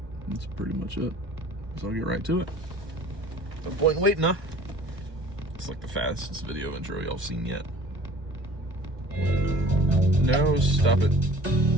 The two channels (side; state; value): left; late; 1.2 ms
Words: That's pretty much it. So I'll get right to it. No point in waiting, huh? It's like the fastest video intro y'all seen yet. No, stop it.